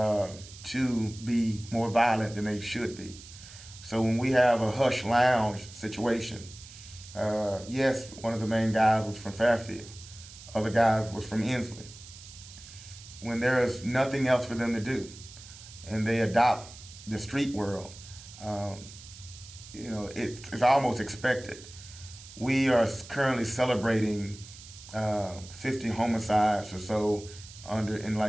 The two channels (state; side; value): noise; right; hiss, 17 dB below the sound